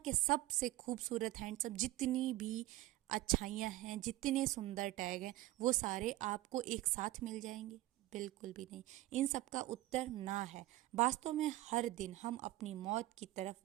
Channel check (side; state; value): left; quieter; 16.6 dB